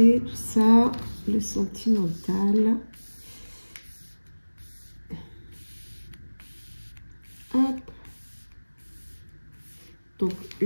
tout ça. Le sentimental, hop, donc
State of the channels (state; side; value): inverted; both; correlation -1.00